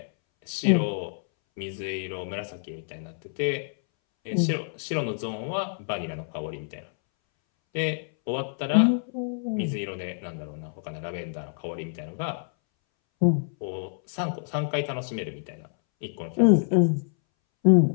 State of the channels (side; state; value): right; silent; 60 dB below the other